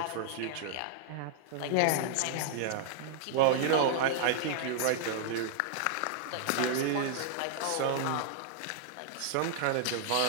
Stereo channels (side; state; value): both; different; correlation -0.01